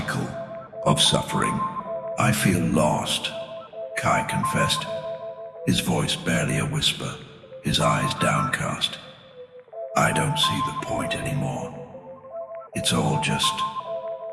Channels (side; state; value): both; identical; correlation 1.00